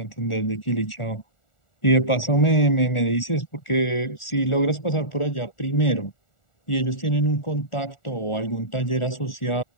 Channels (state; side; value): late; right; 1.4 ms